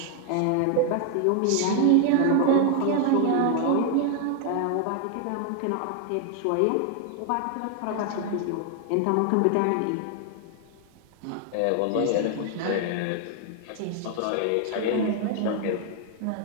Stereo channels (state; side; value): different; both; correlation 0.00